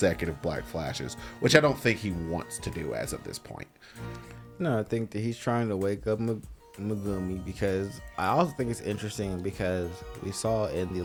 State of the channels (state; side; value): identical; both; correlation 1.00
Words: black flashes, which I don't think he wants to do as of this point. No, I think that he's trying to wake up Megumi, because I also think it's interesting because we saw in the